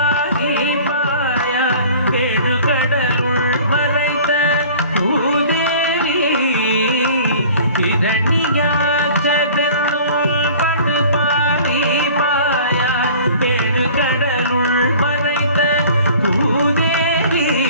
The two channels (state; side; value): inverted; both; correlation -0.46